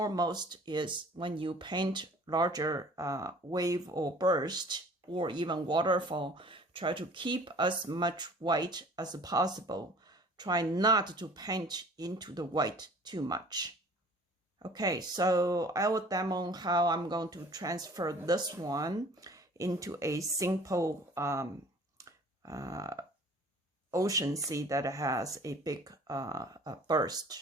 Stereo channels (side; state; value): both; normal; correlation 0.49